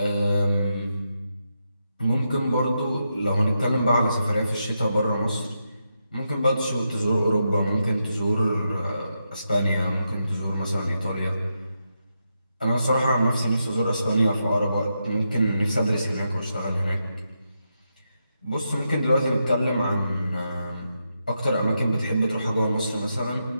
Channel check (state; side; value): inverted; both; correlation -0.84